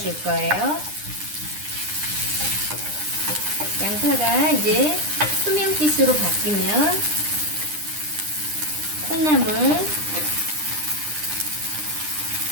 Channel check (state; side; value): late; left; 9.9 ms